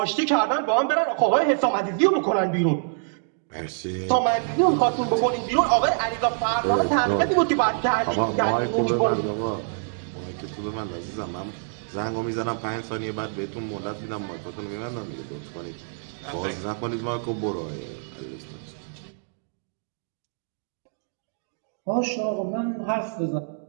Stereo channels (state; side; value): silent; left; digital silence